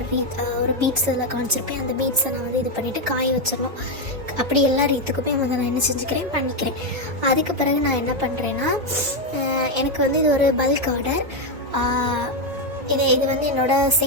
ஒரு பீட்ஸ் இதில் காமிச்சிருப்பேன். அந்த பீட்ஸை நான் இது பண்ணிவிட்டு காய வச்சிடணும். அப்படி எல்லா ரீத்துக்குமே நான் என்ன செஞ்சுக்கிறேன், பண்ணிக்கிறேன். அதுக்கு பிறகு நான் என்ன பண்ணுறேன்னா, எனக்கு இது ஒரு பல்க் ஆர்டர். இது என்னோடய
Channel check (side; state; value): left; late; 1.9 ms